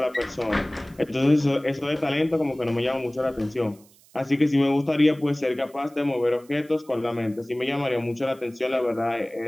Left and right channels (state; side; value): noise; right; hiss, 28 dB below the sound